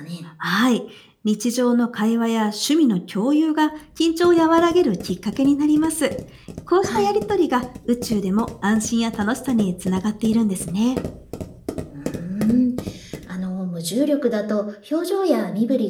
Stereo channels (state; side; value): identical; both; correlation 1.00